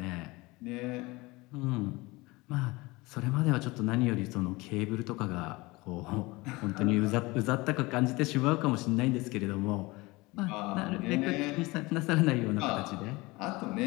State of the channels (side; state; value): right; quieter; 22.6 dB